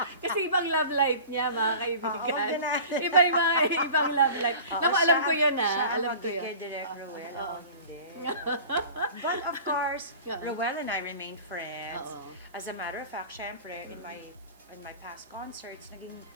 Kasi ibang love life niya, mga kaibigan. Oo, ganun. Iba yung mga ibang love life. Naku, alam ko yun, Siya Alam ang ko yun. kay Direk Roel. Oo. Ako hindi. But of course, Yeah. Roel and I remained friends. Oo. As a matter of fact, syempre, in my past concerts, naging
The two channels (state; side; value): inverted; both; correlation -0.39